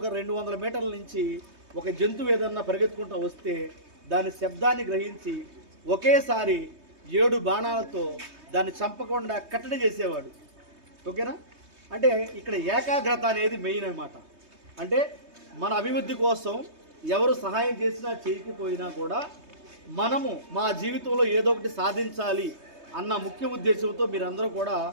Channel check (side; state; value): left; late; 3.2 ms